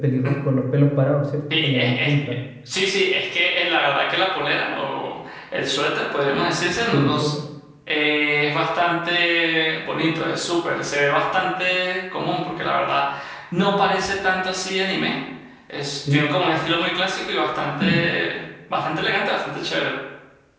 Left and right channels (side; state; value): both; identical; correlation 1.00